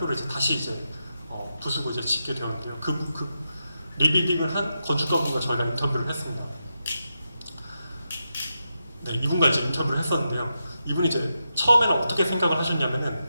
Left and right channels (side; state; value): both; inverted; correlation -0.87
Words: 이제 다시 이제 부수고 이제 짓게 되었는데요. 그 리빌딩을 한 건축가분과 저희가 인터뷰를 했습니다. 네, 이분과 이제 인터뷰를 했었는데요. 이분이 이제 처음에는 어떻게 생각을 하셨냐면은